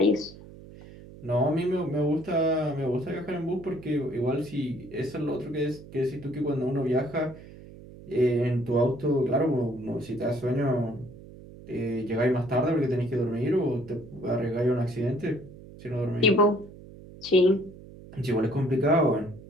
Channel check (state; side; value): noise; right; hum, 18 dB below the sound